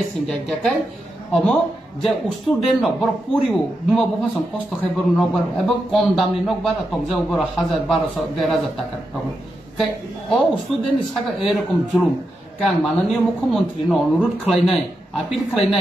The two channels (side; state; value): both; normal; correlation 0.86